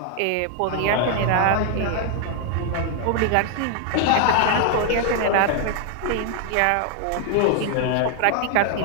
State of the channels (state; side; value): different; both; correlation 0.00